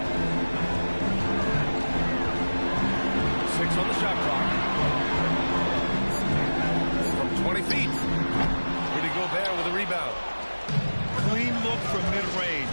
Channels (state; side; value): inverted; both; correlation -1.00